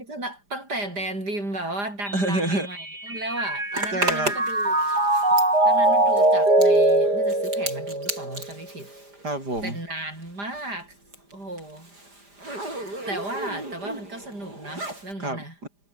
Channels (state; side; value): late; left; 5.0 ms